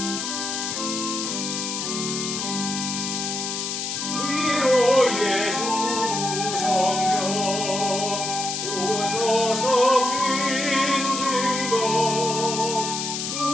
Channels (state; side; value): noise; left; hiss, 3 dB below the sound